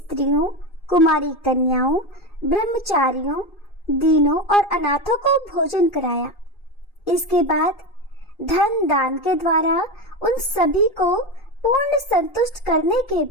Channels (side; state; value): right; late; 2.5 ms